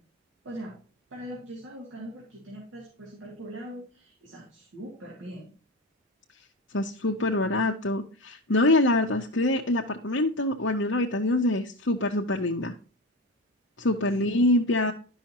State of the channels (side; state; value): both; normal; correlation 0.23